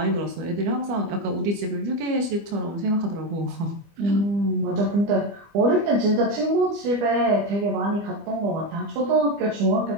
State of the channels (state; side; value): late; left; 25 ms